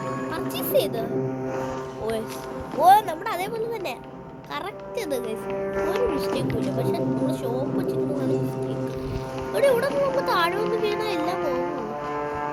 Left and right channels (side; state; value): both; identical; correlation 1.00